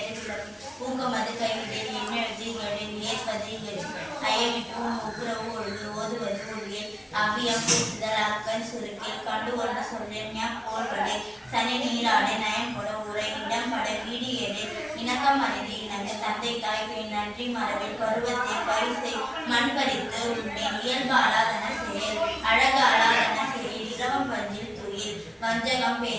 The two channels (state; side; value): identical; both; correlation 1.00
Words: விளக்கு, ஊக்கமது கைவிடல், எண்ணெழுது இகழில், ஏற்பது இகழ்ச்சி, ஐயமிட்டு ஒப்புரவு ஒழுது, ஓதுவது ஒழியல், அவ்வியம் பேசுதல், அக்கன் சுருக்கேல், கண்டு ஒன்று சொல்லிய போல்வடை, சனி நீராடை, நயம் கொட உரை, இடம் பட, வீடு ஏடு, இணக்கம் அறிந்து இணங்க, தந்தை தாய்க்கு நன்றி மரபில், பருவத்தை பரிசை மண் பறித்து உண்மேன், இயல்பு அலாதன செயல், அழகு அலாதன செயல், இளவம் பஞ்சில் துயில், வஞ்சகம்